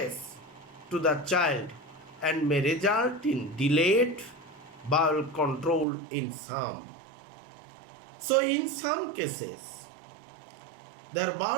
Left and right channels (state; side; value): drops out; left; at 5.9 s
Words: to the child, and may result in delayed bowel control in some. So in some cases, their